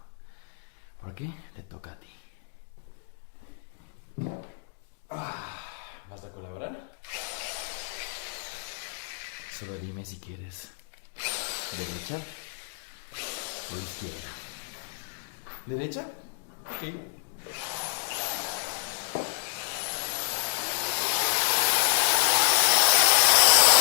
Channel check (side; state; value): right; silent; digital silence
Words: Porque te toca a ti. ¿Vas a colaborar? Solo dime si quieres derecha o izquierda. ¿Derecha? Sí.